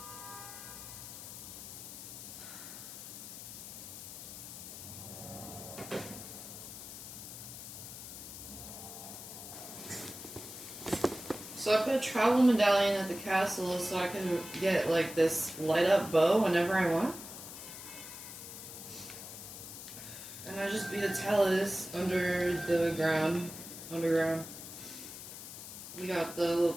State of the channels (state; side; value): noise; left; hiss, 11 dB below the sound